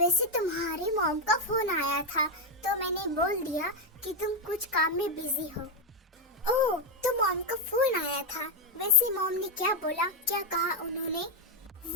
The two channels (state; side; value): normal; both; correlation 0.04